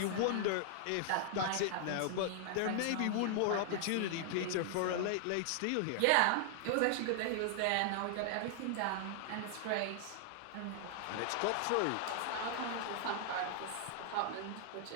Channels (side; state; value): both; different; correlation 0.00